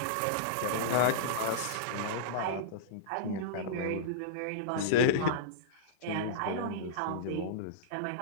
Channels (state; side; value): different; both; correlation -0.03